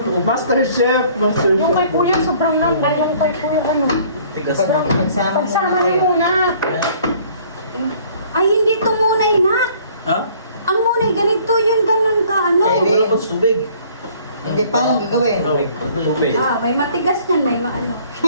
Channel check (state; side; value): inverted; both; correlation -0.56